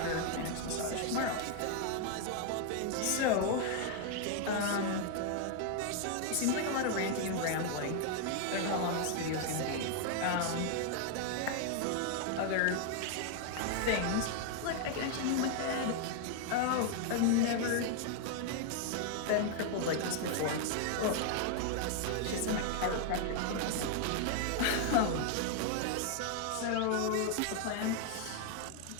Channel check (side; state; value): both; different; correlation 0.00